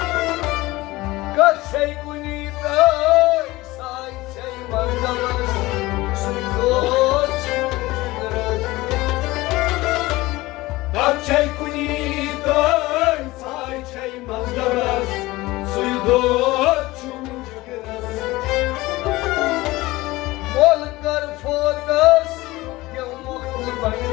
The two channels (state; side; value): quieter; right; 19.6 dB